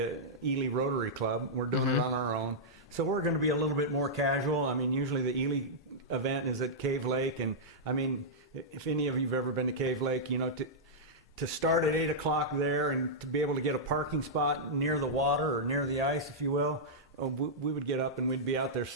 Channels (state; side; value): normal; both; correlation -0.10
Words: Ely Rotary Club. We're doing it on our own. So we're going to be a little bit more casual. I mean, usually the Ely event is at Cave Lake. And, I mean, if any of you have ever been to Cave Lake, to start at 8 o'clock there and to be able to get a parking spot near the water or near the ice, if you will, we would get up and we'd be out there